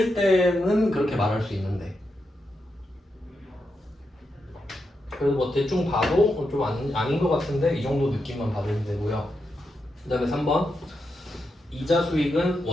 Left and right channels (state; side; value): normal; both; correlation 0.85